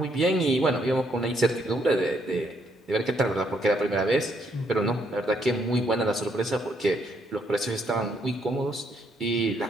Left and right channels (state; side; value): normal; both; correlation 0.72